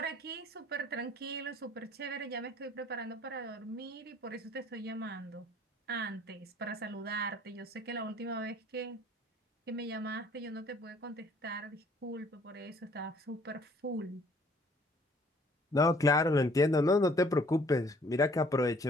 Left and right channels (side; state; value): both; normal; correlation 0.58